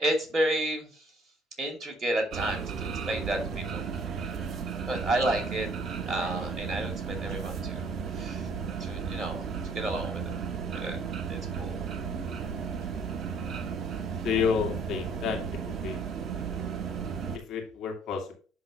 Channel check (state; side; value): normal; both; correlation 0.59